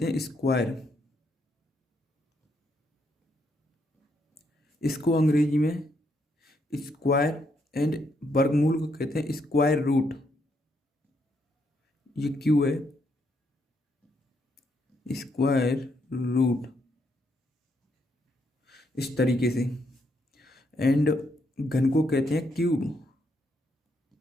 हैं स्क्वायर, इसको अंग्रेजी में स्क्वायर, एंड वर्गमूल को कहते हैं स्क्वायर रूट। ये क्यों है स्क्वायर रूट, इस तरीके से। एंड घन को कहते हैं cube,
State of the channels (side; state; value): both; normal; correlation 0.76